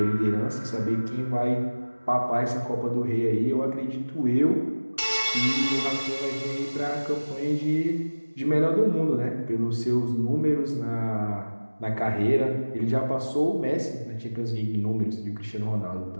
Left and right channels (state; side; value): inverted; both; correlation -1.00